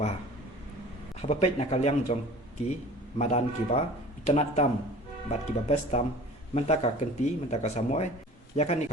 Habapet nakaliang jongki madan kiba itanat tam bat kiba best tam mentaka kenti mentaka samoy yakan ni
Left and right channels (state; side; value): normal; both; correlation 0.43